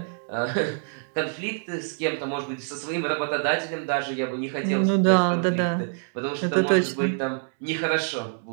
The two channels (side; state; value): left; silent; 61 dB below the other